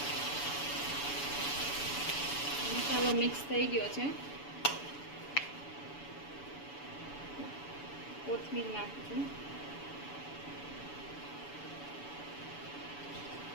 મસાલો મિક્સ થઈ ગયો છે, કોથમીર નાખશું,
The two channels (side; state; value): right; late; 7.0 ms